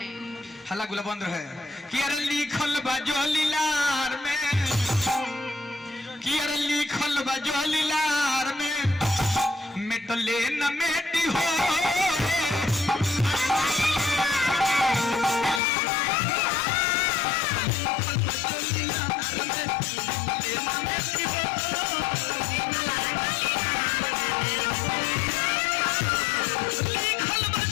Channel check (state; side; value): drops out; right; at 15.6 s